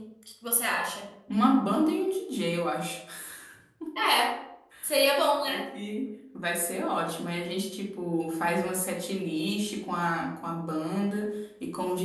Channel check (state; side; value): identical; both; correlation 1.00